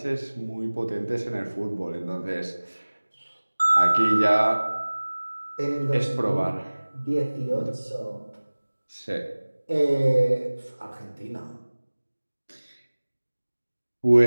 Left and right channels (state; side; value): inverted; both; correlation -1.00